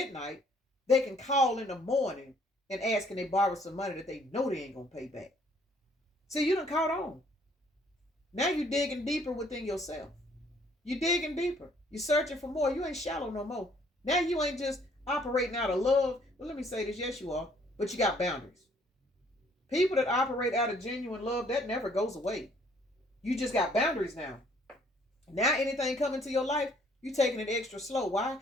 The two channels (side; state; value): both; normal; correlation 0.62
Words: they can call in the morning and ask can they borrow some money that they know they ain't going to pay back. See, you done caught on. Now you digging deeper within yourself. You digging deeper. You searching for more. You ain't shallow no more. Now you ain't just operating out of love. Well, let me say this. Yes, you are. But you got boundaries. People that operate out of genuine love, that never goes away. You just got boundaries now. Now anything coming to your life, you taking it extra slow. Why?